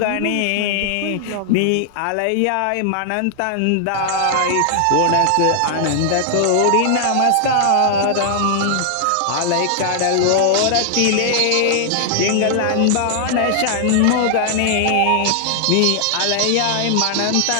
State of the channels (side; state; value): both; different; correlation 0.00